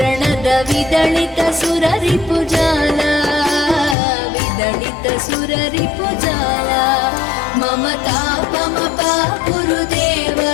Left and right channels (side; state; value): right; drops out; at 4.0 s